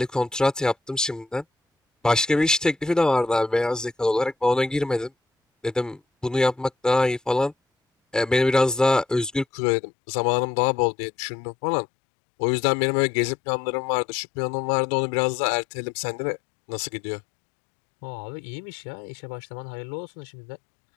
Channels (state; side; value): drops out; right; at 9.5 s